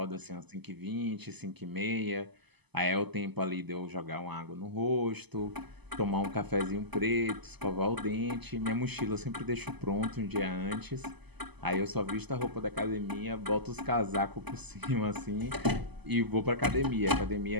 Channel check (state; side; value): late; left; 0.99 ms